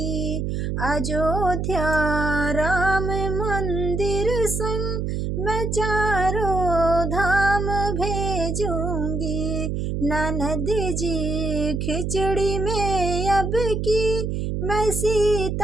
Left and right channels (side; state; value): right; noise; hum, 1 dB below the sound